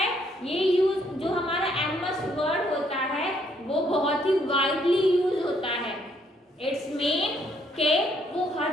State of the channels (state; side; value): normal; both; correlation 0.69